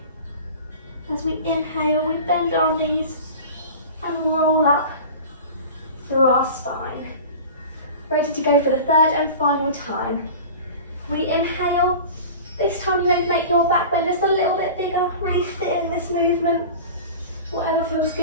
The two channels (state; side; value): inverted; both; correlation -0.36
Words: As we inhale, we bend our knees and roll up through our spine. Ready to go for the third and final time. We inhale. This time you're going to make your back bend just a little bit bigger, really fit in this movement. Whatever feels